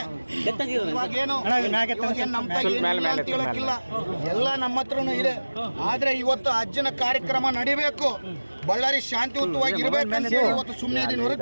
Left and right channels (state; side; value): inverted; both; correlation -1.00